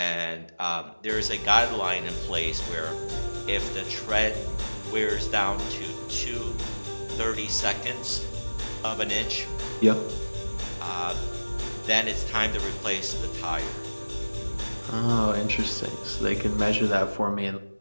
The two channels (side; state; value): both; inverted; correlation -1.00